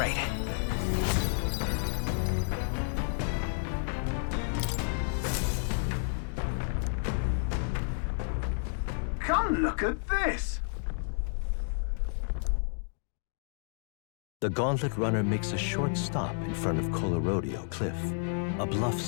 Come look at this! The Gauntlet Runner makes a short stop in front of Colorodeo Cliff, a bluff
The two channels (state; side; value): silent; right; digital silence